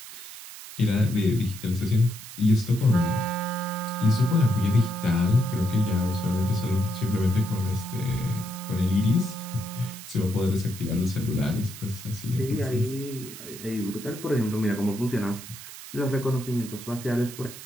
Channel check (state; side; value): noise; right; hiss, 14 dB below the sound